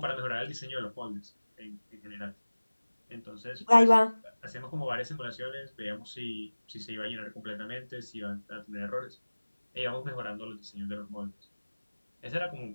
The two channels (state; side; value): inverted; both; correlation -1.00